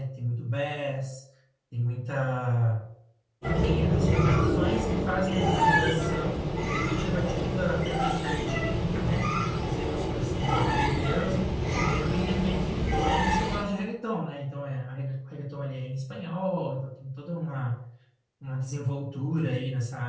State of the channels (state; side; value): identical; both; correlation 1.00